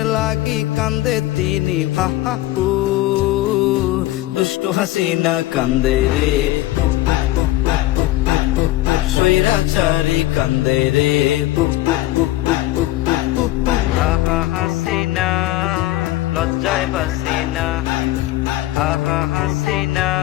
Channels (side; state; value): right; quieter; 16.3 dB